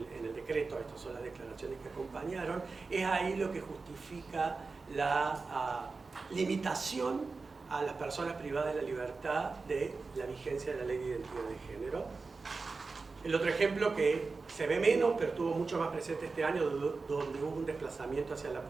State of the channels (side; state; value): left; quieter; 4.1 dB